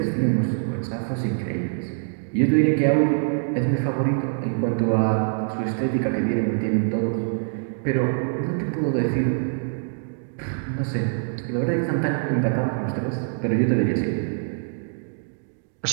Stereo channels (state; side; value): silent; left; digital silence